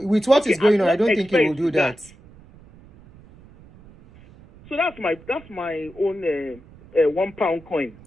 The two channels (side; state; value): right; noise; rumble, 23 dB below the sound